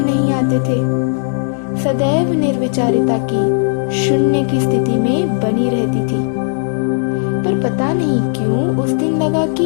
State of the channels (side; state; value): right; silent; digital silence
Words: नहीं आते थे। सदैव निर्विचारिता की शून्य की स्थिति में बनी रहती थी। पर पता नहीं क्यों उस दिन लगा